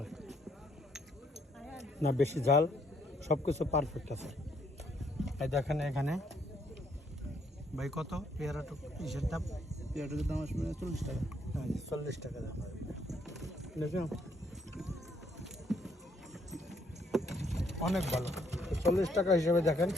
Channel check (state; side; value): normal; both; correlation 0.70